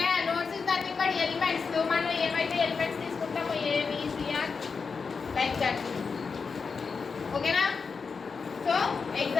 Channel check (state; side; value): quieter; right; 5.2 dB